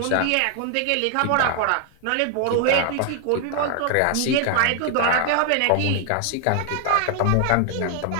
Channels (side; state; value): both; different; correlation 0.00